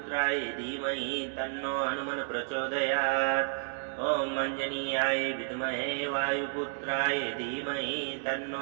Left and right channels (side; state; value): left; silent; digital silence